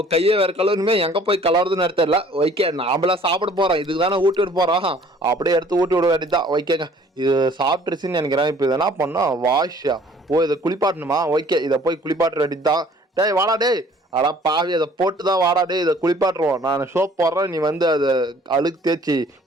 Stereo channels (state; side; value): normal; both; correlation 0.55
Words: கையை வேற கலருமே எங்க போய் கலருதுன்னு தெரியல. ஓகே நாமளா சாப்பிட போறோம், இதுக்கு தானே ஊட்டி விட போறோம். அப்படியே எடுத்து ஊட்டி விட வேண்டியதான். ஓகேங்க, இது சாப்பிட்டுருச்சுன்னு நினைக்கிறேன். இப்போ இதை என்ன பண்ணோம், வாஷா ஓ இதை குளிப்பாட்டணுமா. ஓகே இதை போய் குளிப்பாட்ட வேண்டியதுதான். டேய் வாடா டேய். அடா பாவி, அதை போட்டு தான் வாடா டே. இதை குளிப்பாட்டுருவோம். நான் சோப் போடுறேன், நீ வந்து அதை அழுக்கு தேய்ச்சி